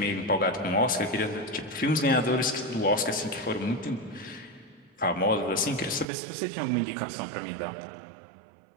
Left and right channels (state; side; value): drops out; left; at 6.1 s